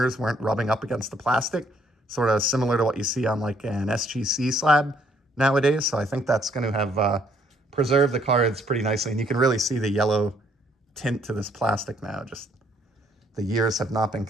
weren't rubbing up against the plastic, sort of similar to what you see on like an SGC slab nowadays. So I think that's going to have preserved the cards pretty nicely, and you can really see the yellow tint to this plastic now. Just the years have not been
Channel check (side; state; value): both; normal; correlation 0.66